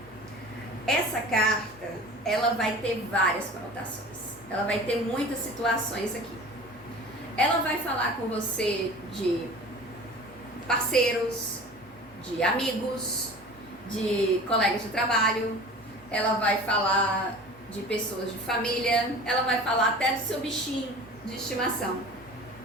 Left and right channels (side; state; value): both; normal; correlation 0.40